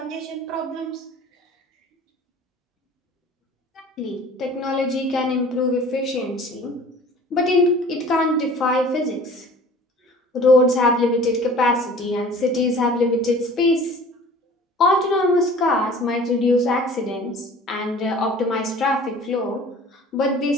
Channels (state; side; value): normal; both; correlation 0.46